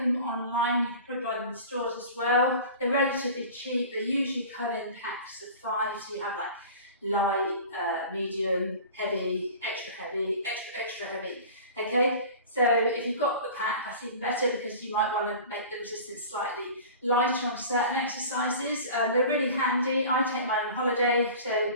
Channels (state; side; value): inverted; both; correlation -0.39